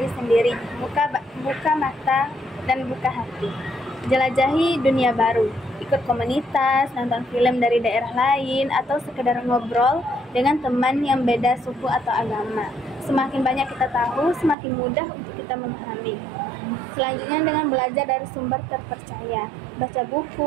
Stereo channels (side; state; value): left; drops out; at 14.6 s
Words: sendiri, buka mata dan buka hati. Jelajahi dunia baru, ikut komunitas, nonton film dari daerah lain, atau sekedar ngobrol dengan teman yang beda suku atau agama. Semakin banyak kita tahu, semakin mudah untuk kita memahami. Selanjutnya dengan belajar dari sumber terpercaya, baca